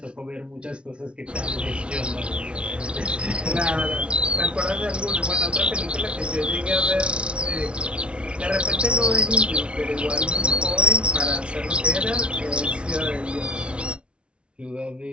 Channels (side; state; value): left; late; 0.058 ms